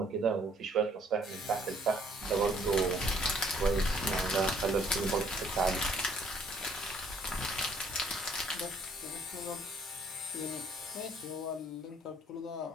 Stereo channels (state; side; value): normal; both; correlation 0.62